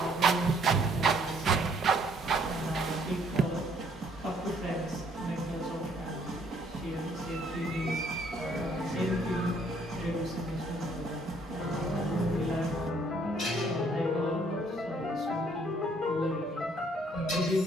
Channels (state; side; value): normal; both; correlation 0.64